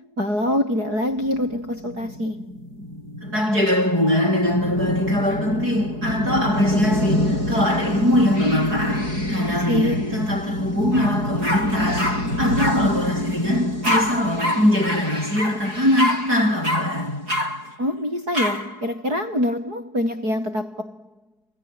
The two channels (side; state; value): left; late; 4.7 ms